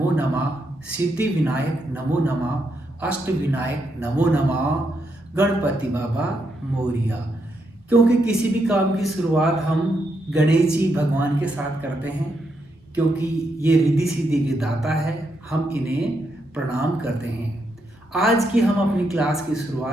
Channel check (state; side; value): normal; both; correlation 0.80